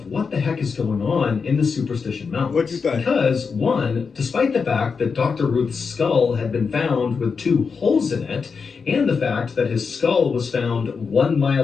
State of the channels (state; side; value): quieter; right; 5.4 dB